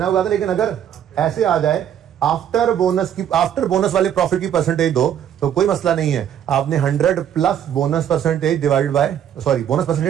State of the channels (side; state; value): left; quieter; 9.7 dB